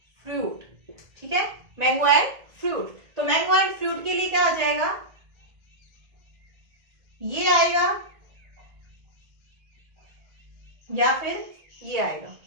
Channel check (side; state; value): left; late; 1.7 ms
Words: फ्रूट, ठीक है, मैंगो एंड फ्रूट। तो मैंगो एंड फ्रूट के लिए क्या आ जाएगा, ये आएगा या फिर ये आएगा,